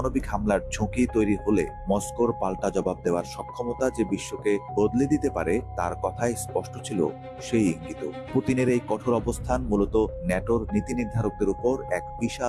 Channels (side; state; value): both; identical; correlation 1.00